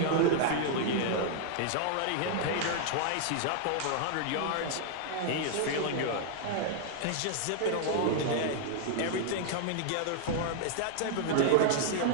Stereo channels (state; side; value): different; both; correlation 0.00